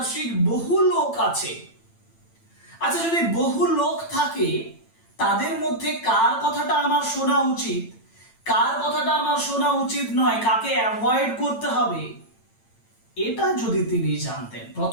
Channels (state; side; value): late; right; 8.9 ms